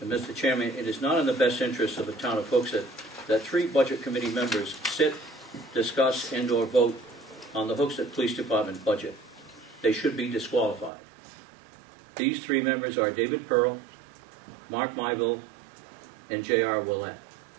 And Mr. Chairman, it is not in the best interest of the town of Hooksett that 3 budget committee members sit, discuss, and/or vote on the Hooksett Police Department budget. They should be disqualified. These 3 members are David Pearl, Mark Myville, and J.R. Willett.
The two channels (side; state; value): left; drops out; at 10.9 s